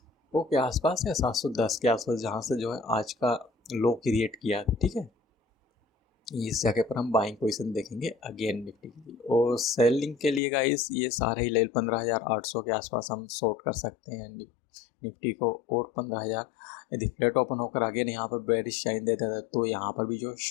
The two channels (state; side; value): drops out; right; at 10.4 s